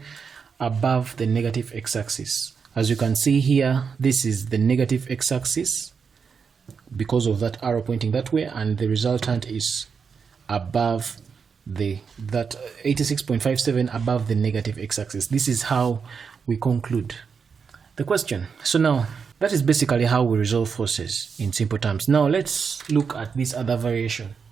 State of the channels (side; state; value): left; quieter; 5.9 dB